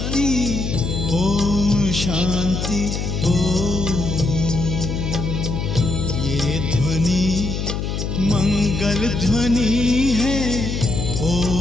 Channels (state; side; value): noise; left; hum, 3 dB below the sound